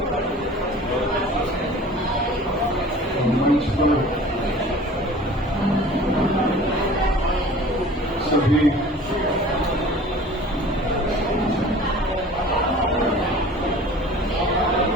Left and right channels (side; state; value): both; normal; correlation 0.44